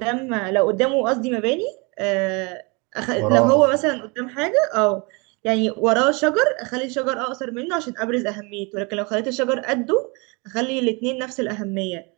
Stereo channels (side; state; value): left; quieter; 29.6 dB